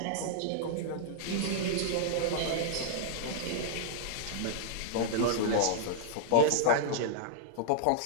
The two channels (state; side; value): different; both; correlation -0.01